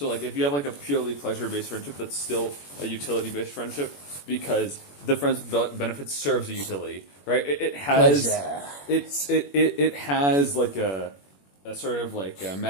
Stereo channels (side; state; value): right; late; 21 ms